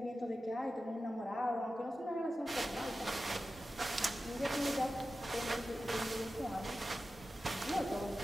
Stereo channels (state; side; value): normal; both; correlation 0.93